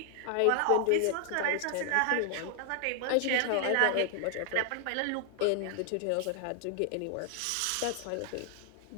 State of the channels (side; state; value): both; different; correlation 0.00